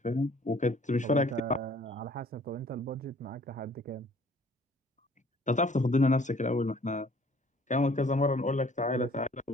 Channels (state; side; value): normal; both; correlation 0.56